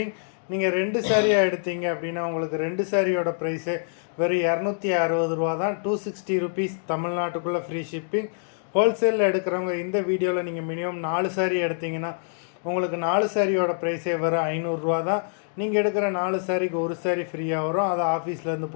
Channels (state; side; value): silent; right; digital silence